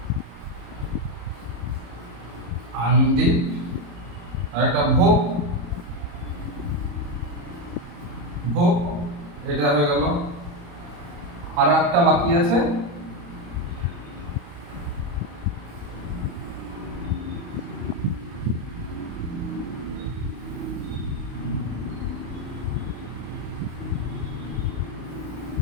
আন্দি, আর একটা ভোগ। ভোগ, এটা হয়ে গেল। আর একটা বাকি আছে,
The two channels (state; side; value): late; left; 35 ms